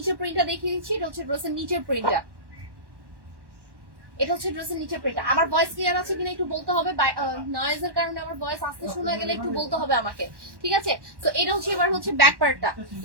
প্রিন্টটা দেখিয়ে দিচ্ছি। এটা হচ্ছে ড্রেসের নিচের প্রিন্টটা, এটা হচ্ছে ড্রেসের নিচের প্রিন্টটা। আমার ভয়েস ক্লিয়ার আছে কিনা একটু বলতে হবে, নয়েজের কারণে আমার ভয়েস আস্তে শোনা গেলে একটু বলতে হবে আমাকে। ঠিক আছে, তো এটা হচ্ছে এবার হচ্ছে ব্যাক পার্টটা,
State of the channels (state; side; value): late; left; 1.1 ms